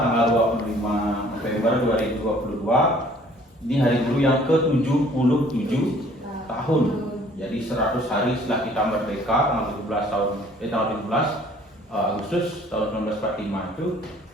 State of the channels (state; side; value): normal; both; correlation 0.56